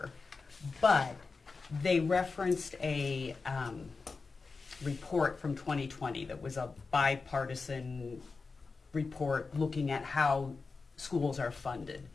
but they referenced a report from 2020 that was a bipartisan report looking at how schools are funded.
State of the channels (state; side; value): quieter; right; 4.3 dB